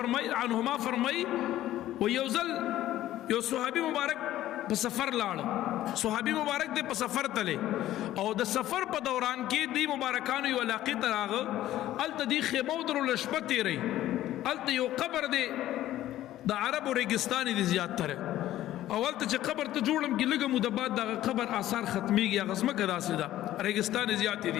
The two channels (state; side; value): quieter; right; 13.8 dB